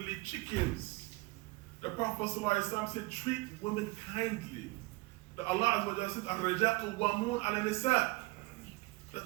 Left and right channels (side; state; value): left; quieter; 23.2 dB